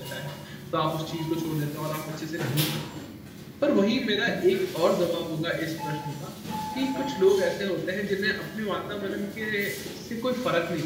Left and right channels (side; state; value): both; identical; correlation 1.00